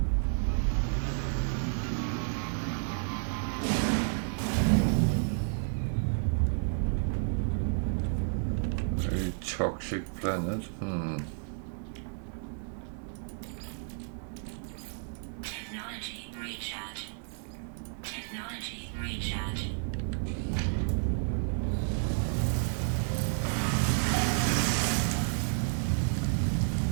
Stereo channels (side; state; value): left; silent; digital silence